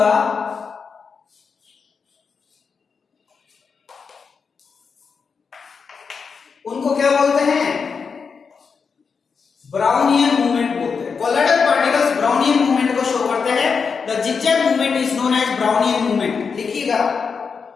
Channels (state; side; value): quieter; right; 5.6 dB